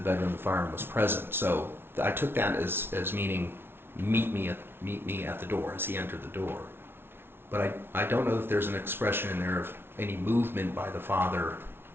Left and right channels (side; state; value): left; late; 0.11 ms